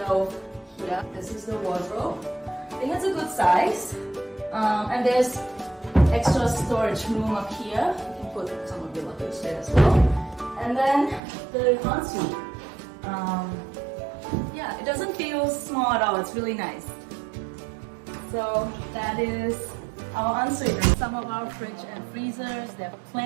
here. This is the wardrobe. I think it's a good size. And there's extra storage room up here. You can put some of your luggage there as well. And then the ensuite. Yeah, it doesn't feel small at all. It's really nice. So that is our ensuite. Some of our fridge and freezers, there are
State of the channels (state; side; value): drops out; left; at 11.2 s